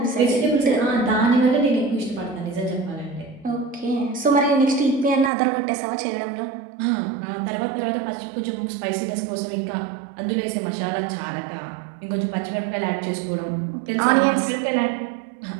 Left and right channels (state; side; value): drops out; left; at 5.3 s